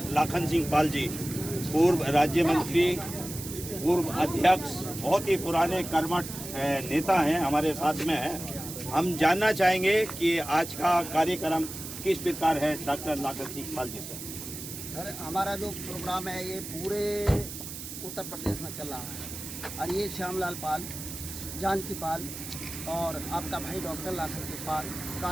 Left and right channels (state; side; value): noise; right; hiss, 9 dB below the sound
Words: लाखन सिंह पाल जी पूर्व राज्य मंत्री, पूर्व अध्यक्ष, बहुत ही पुराने कर्मठ नेता हैं, हमारे साथ में हैं। हम जानना चाहेंगे कि आज का कार्यक्रम किस प्रकार है डॉक्टर लाखन सिंह पाल जी से। सर, हमारा जो प्रोग्राम है ये पूरे उत्तर प्रदेश में चल रहा है और ये श्यामलाल पाल, जानकी पाल और आपका भाई डॉक्टर लाखन सिंह पाल,